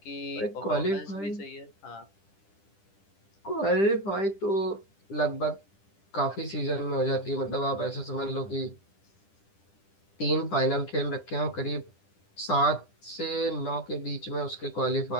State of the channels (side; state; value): right; late; 10 ms